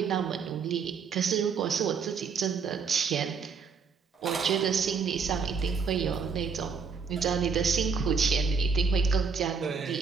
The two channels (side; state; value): left; quieter; 5.6 dB